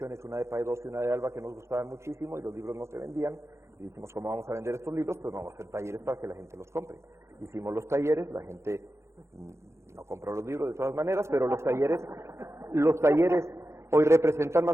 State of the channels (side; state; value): left; late; 0.13 ms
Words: una de Paidós y una de Alba, que nos gustaban muchísimo y los libros no se vendían, y dijimos, ¿cómo vamos a vender estos libros? Pues vamos a hacer talleres para que la gente los compre. Hicimos los talleres, la gente no compró los libros de todas maneras, pero los talleres hoy representan